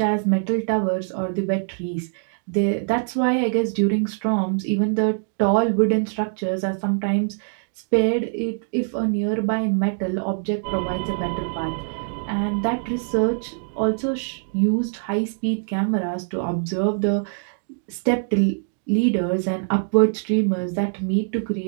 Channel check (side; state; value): left; silent; 63 dB below the other